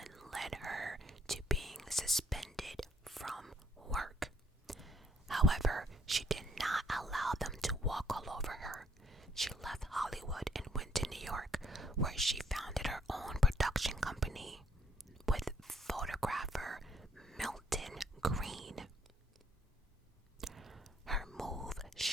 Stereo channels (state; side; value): normal; both; correlation 0.67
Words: led her to being suspended from work. However, she did not allow them to walk all over her. She left Hollywood and went to New York, where she founded her own production company with photographer Milton Green. Her move